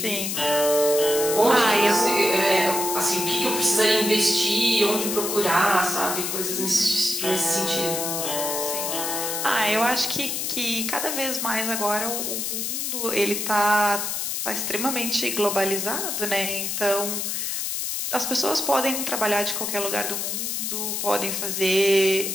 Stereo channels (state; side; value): noise; left; hiss, 2 dB below the sound